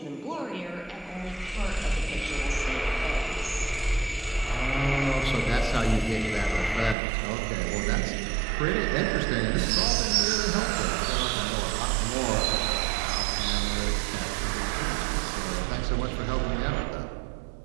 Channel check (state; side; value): drops out; left; at 7.0 s